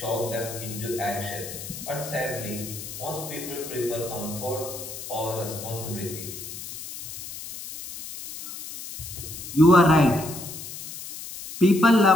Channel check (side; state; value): left; noise; hiss, 10 dB below the sound